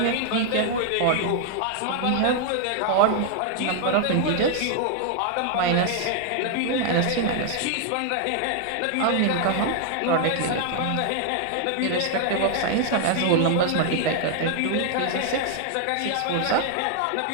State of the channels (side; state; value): both; different; correlation 0.00